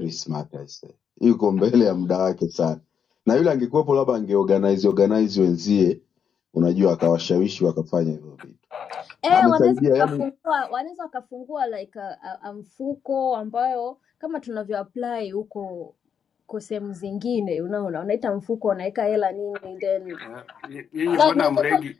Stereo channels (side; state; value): right; quieter; 7.5 dB